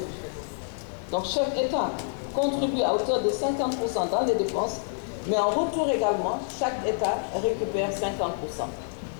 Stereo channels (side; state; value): right; silent; digital silence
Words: Donc chaque État contribue à hauteur de 50% dans les dépenses, mais en retour également, chaque État récupère 50%.